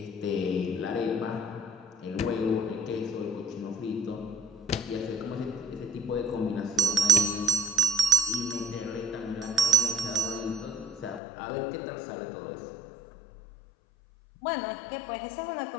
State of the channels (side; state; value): right; drops out; at 11.2 s